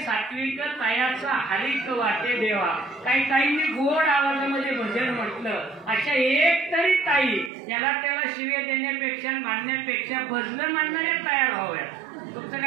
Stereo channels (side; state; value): left; drops out; at 7.5 s